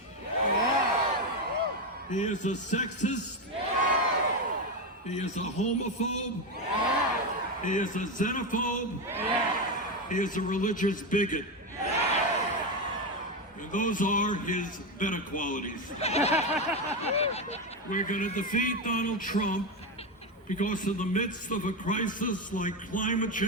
he is a sexist, he is a homophobe, he is a xenophobe, he is a religious bigot. And those are his better qualities. We're going to defeat Donald Trump because in the midst of a crisis like climate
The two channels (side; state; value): both; normal; correlation 0.12